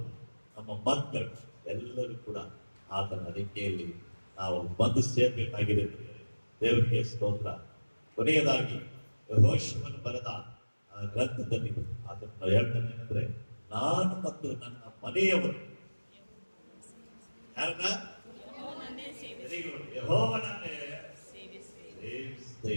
ನಮ್ಮ ಮಕ್ಕಳು ಎಲ್ಲರೂ ಕೂಡ ಆತನ ರೆಕ್ಕೆಯಲ್ಲಿ ನಾವು ಬಂದು ಸೇರ್ಬೇಕಾಗಿದೆ. ದೇವರಿಗೆ ಸ್ತೋತ್ರ. ಕೊನೆಯದಾಗಿ ಯೆಹೋಶುವನು ಬರೆದ ಗ್ರಂಥದಲ್ಲಿ ಆತನ ಹೇಳ್ತಾನೆ ಏನಂದ್ರೆ, ನಾನು ಮತ್ತು ನನ್ನ ಮನೆಯವರು ಯಾರನ್ನ ಯೆಹೋವನನ್ನೇ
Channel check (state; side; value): inverted; both; correlation -1.00